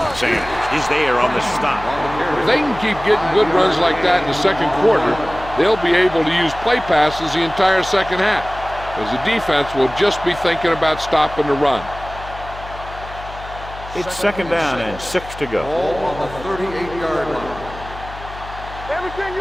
Sanders is there on the stop. If they can keep getting good runs like that in the second quarter, they'll be able to use play passes the entire second half, as the defense will just be thinking about stopping the run. It's second down and 6 to go. Ball on the 38-yard line. Everything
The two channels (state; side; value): noise; left; hum, 14 dB below the sound